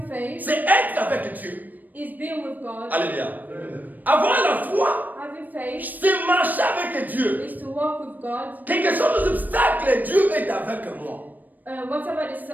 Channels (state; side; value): late; left; 0.086 ms